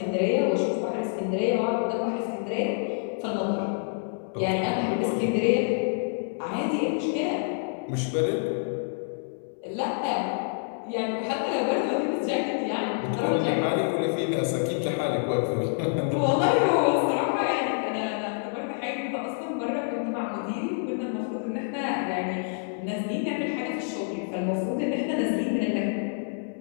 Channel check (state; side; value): silent; right; digital silence